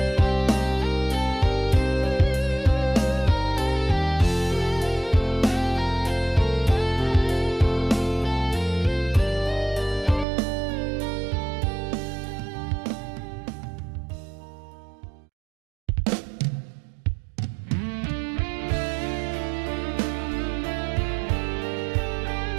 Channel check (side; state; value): left; drops out; at 10.2 s